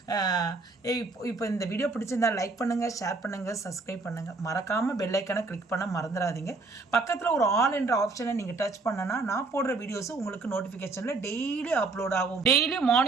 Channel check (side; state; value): left; quieter; 3.8 dB